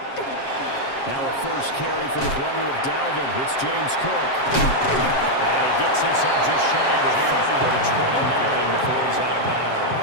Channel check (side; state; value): right; late; 7.5 ms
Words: Now a first carry for the brother of Dalvin. It's James Cook. And he gets this up just shy of the 30 to the 29 before he's out of